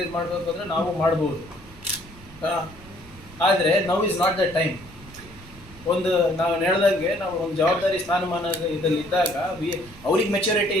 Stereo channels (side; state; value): right; noise; rumble, 20 dB below the sound